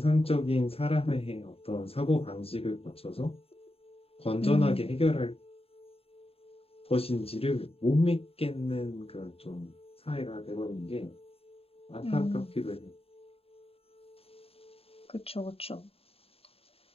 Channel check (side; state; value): right; late; 0.28 ms